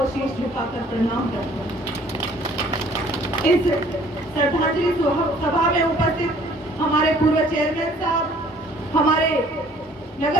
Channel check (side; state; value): both; normal; correlation 0.56